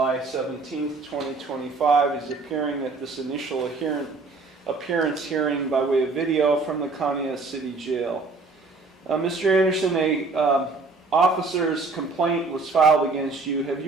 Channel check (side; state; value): left; quieter; 3.8 dB